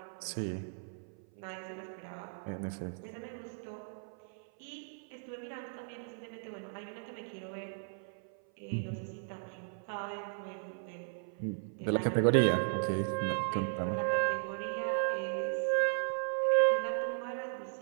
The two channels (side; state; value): left; silent; 54 dB below the other